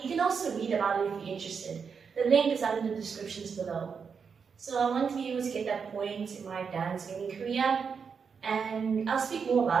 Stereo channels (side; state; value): left; quieter; 6.1 dB